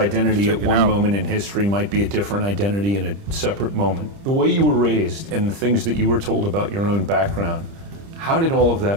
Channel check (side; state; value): left; late; 30 ms